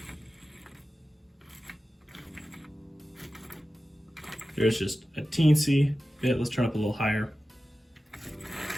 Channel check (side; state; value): both; normal; correlation 0.94